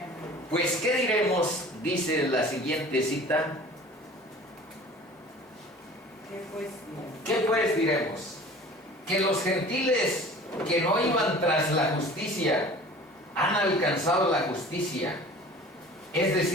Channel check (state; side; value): normal; both; correlation 0.44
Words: Pues, ¿qué diremos? Dice la siguiente cita. ¿Qué pues diremos? Que los gentiles que no iban tras la justicia han alcanzado la justicia, es